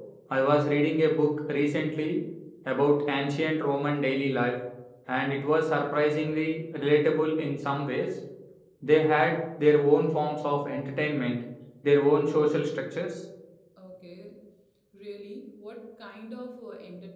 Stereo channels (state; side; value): identical; both; correlation 1.00